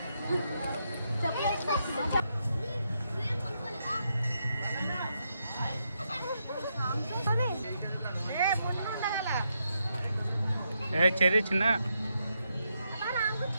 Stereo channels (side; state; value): both; inverted; correlation -0.81